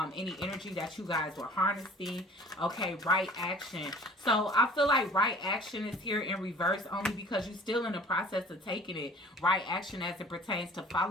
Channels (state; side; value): normal; both; correlation 0.49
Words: any energy that you guys were harnessing. Okay, right action. So I feel like right action is here in reverse only because you're still in the process of taking it. Right action as it pertains to